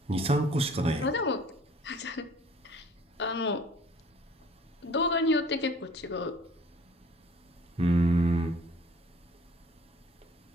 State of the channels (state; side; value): normal; both; correlation 0.52